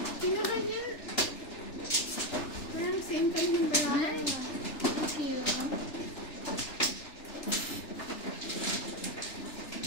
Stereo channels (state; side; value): late; right; 3.4 ms